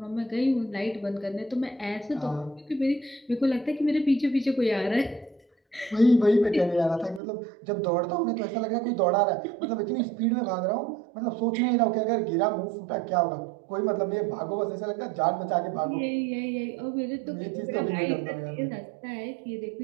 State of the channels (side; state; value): left; drops out; at 7.2 s